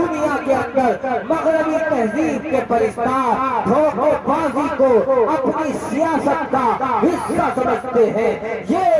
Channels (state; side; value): identical; both; correlation 1.00